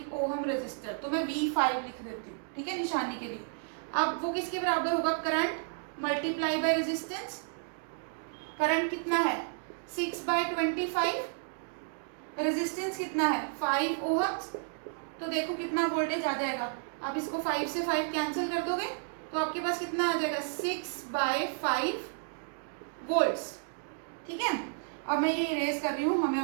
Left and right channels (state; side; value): silent; left; digital silence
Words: ओम रेजिस्टर। तो मैं V5 लिख देती हूँ, ठीक है, निशानी के लिए। अब वो किसके बराबर होगा, current multiply by resistance. Current कितना है, 6/25, रेजिस्टेंस कितना है, 5 ओहम्स। तो देखो कितना वोल्टेज आ जाएगा, आप इसको 5 से 5 कैंसिल कर दोगे तो आपके पास कितना आ जाएगा, 6/5 वोल्ट्स। ठीक है, अब मैं ये इरेज कर रही हूँ, हमें